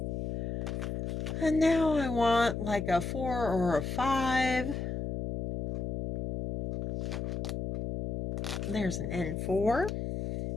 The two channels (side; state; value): left; noise; hum, 2 dB below the sound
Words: And now I want like a 4 or a 5. There's an N4.